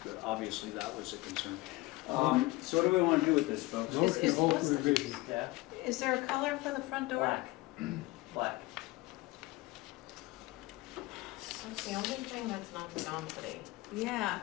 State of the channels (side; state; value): right; quieter; 20.7 dB